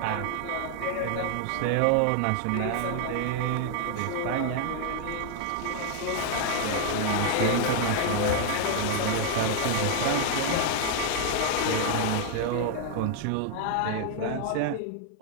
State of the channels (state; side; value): different; both; correlation 0.00